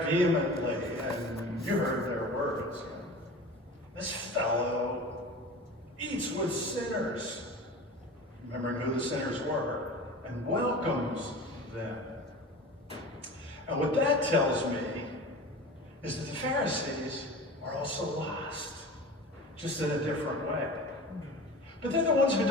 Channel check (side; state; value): both; normal; correlation 0.36